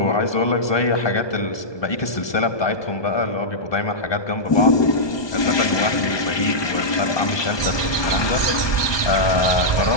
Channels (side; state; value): right; late; 1.2 ms